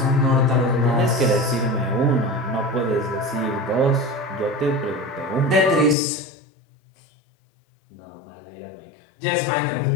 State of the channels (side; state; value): right; drops out; at 6.0 s